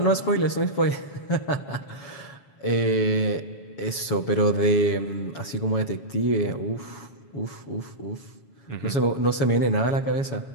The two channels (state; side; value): late; right; 7.1 ms